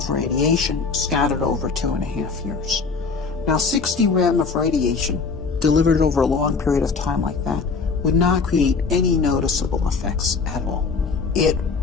radiation scattered over 2.5 years. Now, 60 rem of radiation delivered over a long period of time like that would not create any noticeable effects at all. It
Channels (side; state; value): right; quieter; 4.8 dB